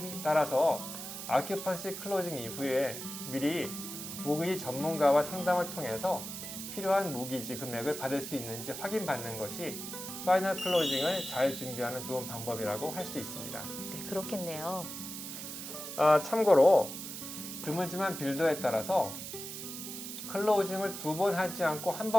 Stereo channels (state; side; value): noise; right; hiss, 8 dB below the sound